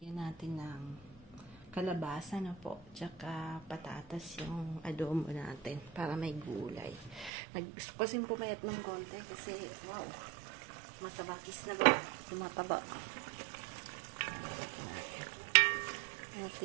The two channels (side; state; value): left; drops out; at 7.3 s